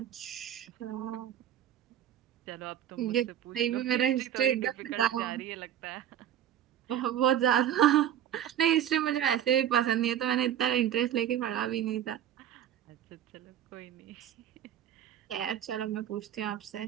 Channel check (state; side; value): quieter; left; 10.5 dB